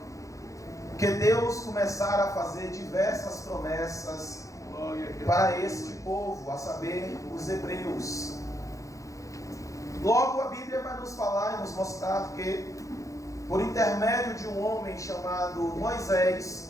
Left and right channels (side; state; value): right; late; 0.16 ms